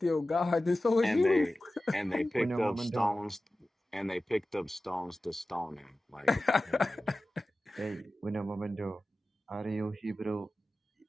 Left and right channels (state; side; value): normal; both; correlation 0.95